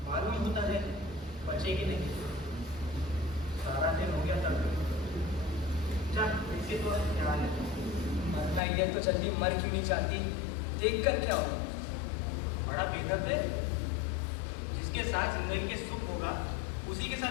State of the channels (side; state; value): right; drops out; at 8.6 s